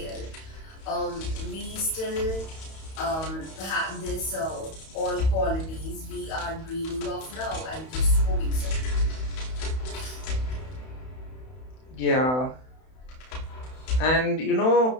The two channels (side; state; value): right; late; 31 ms